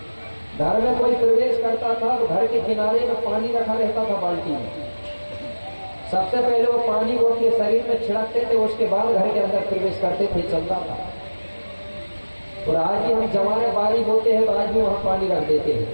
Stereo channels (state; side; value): inverted; both; correlation -1.00